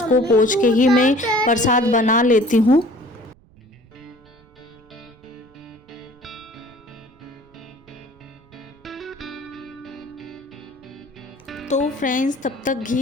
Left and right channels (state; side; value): noise; right; rumble, 29 dB below the sound